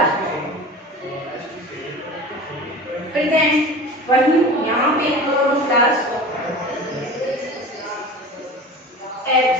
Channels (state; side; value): normal; both; correlation 0.36